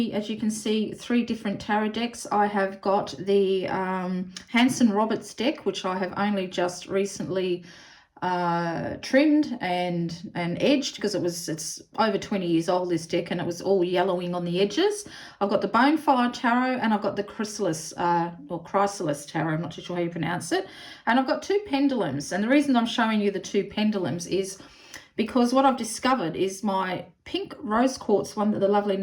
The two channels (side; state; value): both; identical; correlation 1.00